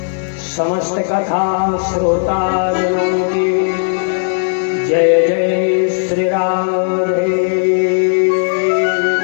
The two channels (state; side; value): silent; right; digital silence